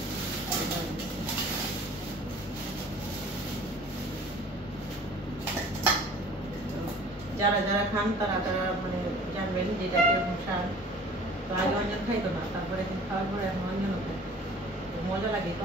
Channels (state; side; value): normal; both; correlation 0.48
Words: যারা যারা খান তারা তারা মানে জানবেন যে এটা কিরকম স্বাদ। তো আগে অঞ্জন খাইতো না, তারপরে এখন খাওয়ার পরে এখন অঞ্জনও খায়, মজা লাগে।